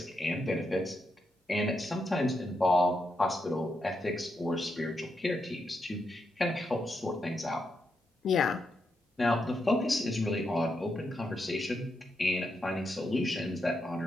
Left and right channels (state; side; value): normal; both; correlation 0.83